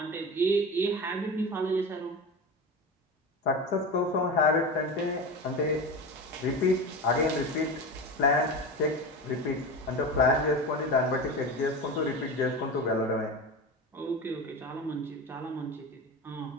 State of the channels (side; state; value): both; normal; correlation 0.25